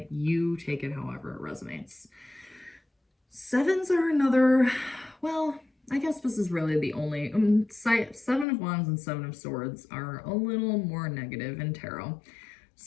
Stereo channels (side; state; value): right; drops out; at 8.5 s